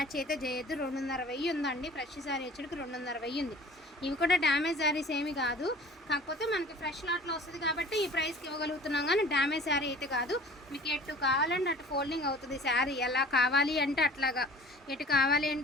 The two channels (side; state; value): both; normal; correlation 0.45